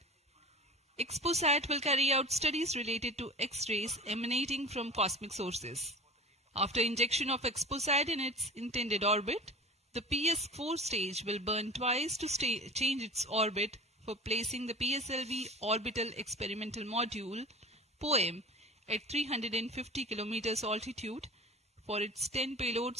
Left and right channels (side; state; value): both; normal; correlation 0.37